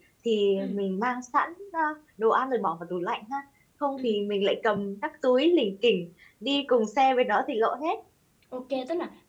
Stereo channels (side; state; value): both; identical; correlation 1.00